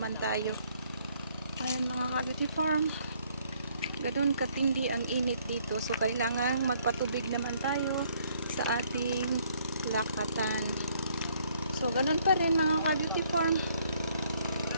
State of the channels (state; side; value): inverted; both; correlation -0.66